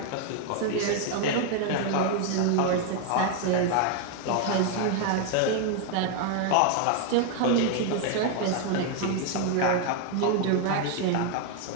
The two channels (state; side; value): different; both; correlation 0.00